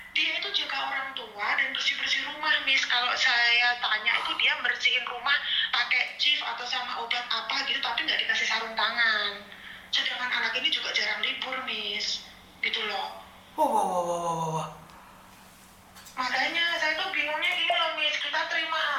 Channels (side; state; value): both; identical; correlation 1.00